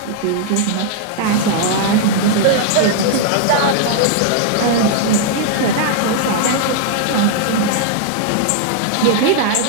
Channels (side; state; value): both; different; correlation -0.01